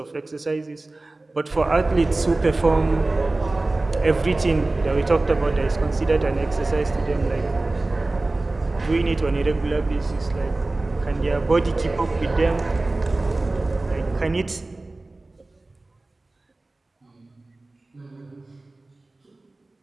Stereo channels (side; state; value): left; quieter; 3.0 dB